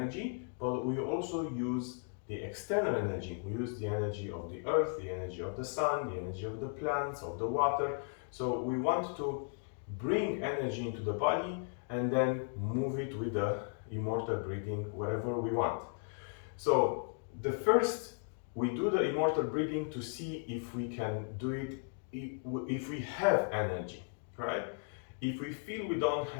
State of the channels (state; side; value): silent; right; 54 dB below the other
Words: but we also use the external energy. We use the energy of the earth, the energy of the sun, the energy of the plants, of the water. So we want to bring energy into the body and then move it with the immortal breathing wherever we want. So the first, we do the immortal breathing to see if we can do it, if we have energy, right? If we feel we don't